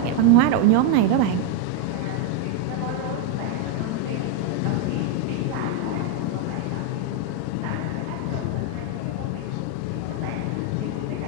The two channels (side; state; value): both; different; correlation 0.01